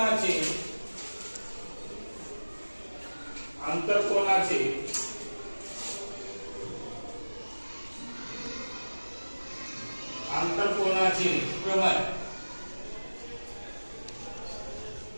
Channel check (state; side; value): inverted; both; correlation -1.00